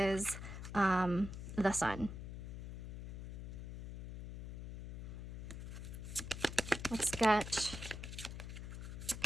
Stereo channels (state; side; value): noise; left; hum, 8 dB below the sound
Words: the Sun. Let's get